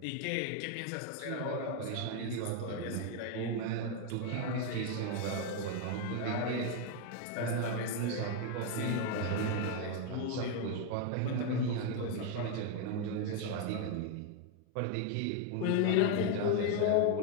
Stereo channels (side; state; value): both; different; correlation 0.01